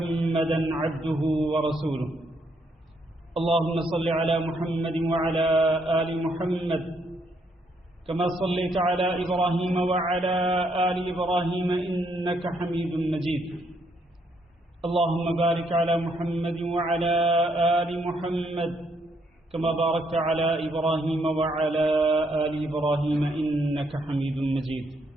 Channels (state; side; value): normal; both; correlation 0.73